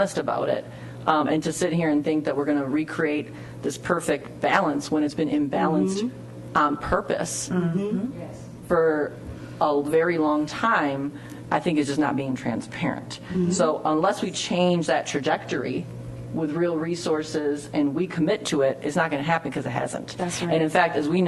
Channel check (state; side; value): identical; both; correlation 1.00